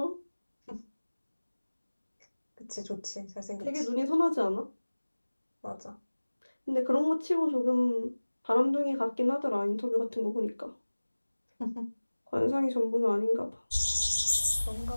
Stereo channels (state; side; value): inverted; both; correlation -1.00